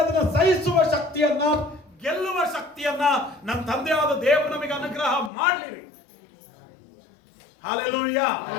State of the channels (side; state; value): right; drops out; at 5.3 s